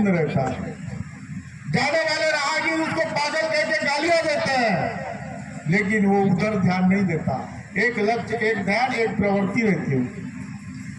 रहता है, जाने वाले राहगीर उसको पागल कह के गालियां देते हैं, लेकिन वो उधर ध्यान नहीं देता। एक लक्ष्य, एक ध्यान, एक प्रवृत्ति रहती है।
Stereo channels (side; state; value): both; identical; correlation 1.00